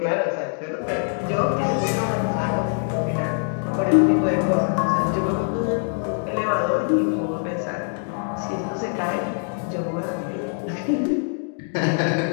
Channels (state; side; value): silent; right; 56 dB below the other